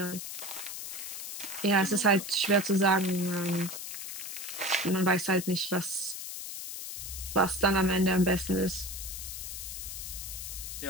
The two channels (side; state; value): left; noise; hiss, 7 dB below the sound